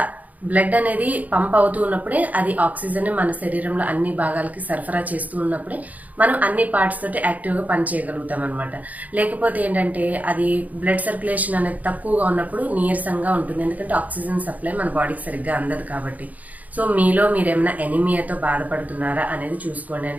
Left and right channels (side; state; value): left; late; 0.075 ms